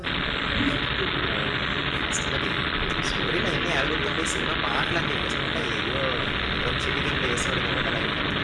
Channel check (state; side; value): identical; both; correlation 1.00